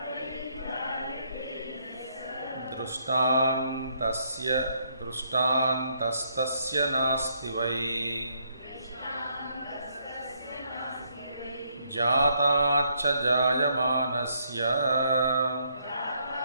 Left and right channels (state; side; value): inverted; both; correlation -0.73